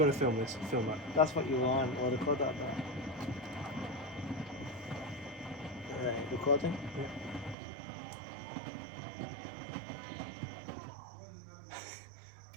to film this. Film that. That's what you want. We'll record that back. Right, recording.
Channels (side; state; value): left; drops out; at 7.6 s